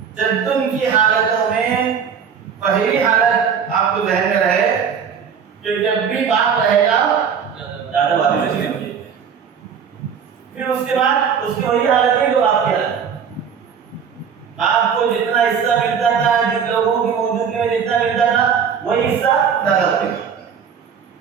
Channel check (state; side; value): quieter; left; 7.1 dB